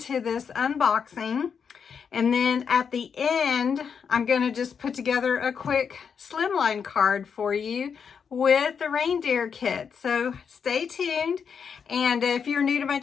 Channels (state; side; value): quieter; right; 6.6 dB